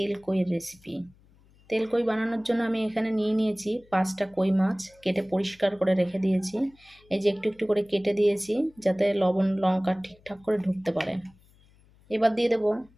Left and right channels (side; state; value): left; noise; hum, 29 dB below the sound